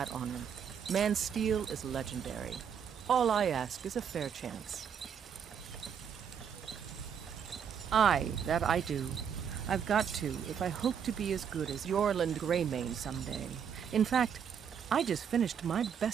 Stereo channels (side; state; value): left; quieter; 7.6 dB